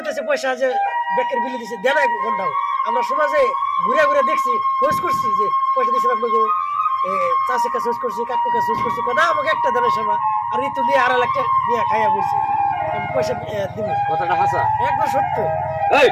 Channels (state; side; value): identical; both; correlation 1.00